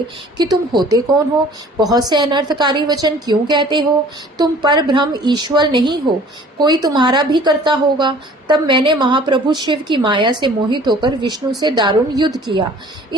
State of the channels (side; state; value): both; normal; correlation 0.50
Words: कि तुम होते कौन हो? बहुत से अनर्थकारी वचन क्यों कहते हो? तुम पर ब्रह्म ईश्वर नहीं हो, कोई तुम्हारा भी करता होगा। तब मैंने महाप्रभु शिव की माया से मोहित होकर विष्णु से दारुण युद्ध किया।